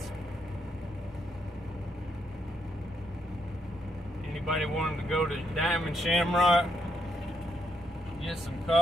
Anybody wanting to go to Diamond Shamrock, get some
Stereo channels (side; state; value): both; normal; correlation 0.77